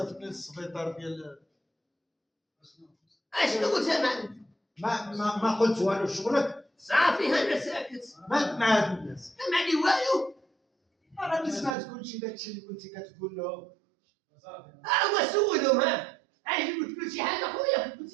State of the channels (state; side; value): drops out; left; at 11.8 s